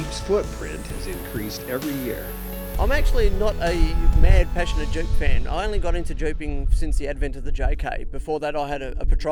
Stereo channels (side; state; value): both; identical; correlation 1.00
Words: footprint has increased every year. I'm actually not a mad, passionate Jeep fan. I only got into Jeeping since the advent of the JK. Before that, I had a